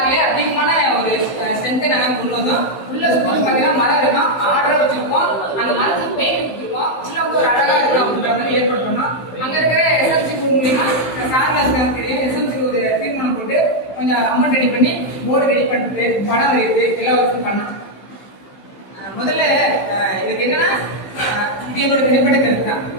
அதிகமான ஒரு ஸ்ட்ரென்த்தை நாங்கள் கொண்டு வந்தோம். உள்ள ஸ்கூல் பார்த்தீங்கன்னா மரம் இருக்கும், ஆர்டரை வச்சிருப்போம். அந்த மரத்துக்கு பெயிண்ட் கொடுத்துருப்போம். உள்ள ஒரு அழகா இருக்கும் அப்படின்ற மாதிரி ஏற்பாடு பண்ணோம். அங்க இருக்கிற எஸ்எம்சி மூலியமா சார்லாஸ்க்கு தெரியும். எஸ்எம்சி ஒரு தீர்மானம் போட்டு கொஞ்சம் அமௌண்ட் ரெடி பண்ணி போர்டு ரெடி பண்ணிட்டு படம் வரையுது எல்லா ஒர்க்கும் பண்ணோம். முதல்ல இதுக்கு என்னன்னா இது எங்களோட தனிப்பட்ட கருத்து தான்.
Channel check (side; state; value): right; late; 15 ms